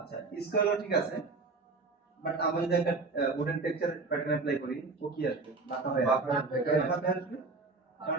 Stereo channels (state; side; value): quieter; left; 3.8 dB